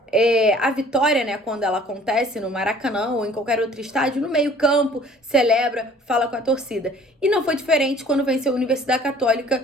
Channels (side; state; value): both; normal; correlation 0.52